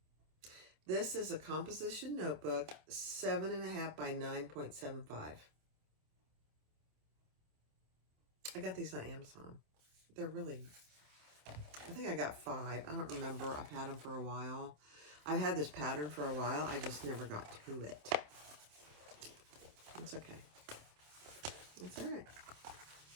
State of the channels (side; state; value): left; late; 27 ms